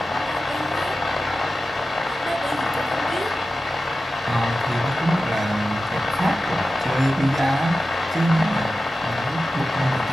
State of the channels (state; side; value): normal; both; correlation 0.94